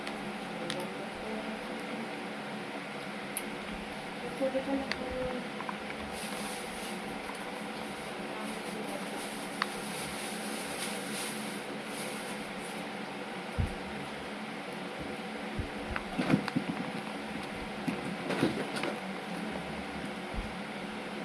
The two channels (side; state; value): both; identical; correlation 1.00